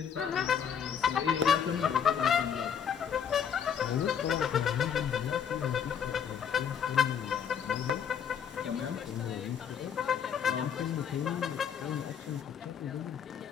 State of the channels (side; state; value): right; quieter; 7.9 dB